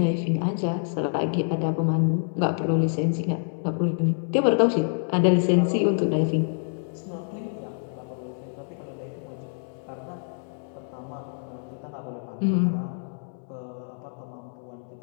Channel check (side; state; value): right; silent; digital silence